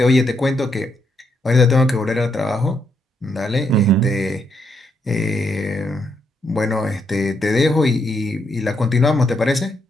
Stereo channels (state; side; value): normal; both; correlation 0.77